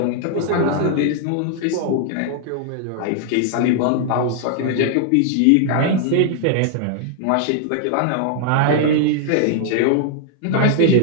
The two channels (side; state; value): both; different; correlation 0.00